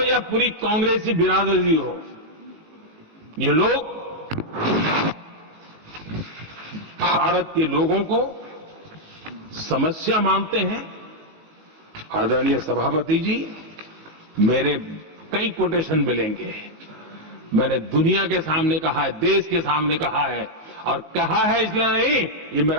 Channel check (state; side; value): late; left; 18 ms